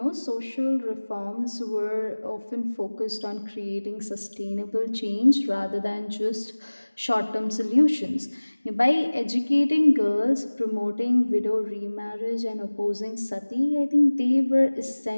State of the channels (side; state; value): both; inverted; correlation -1.00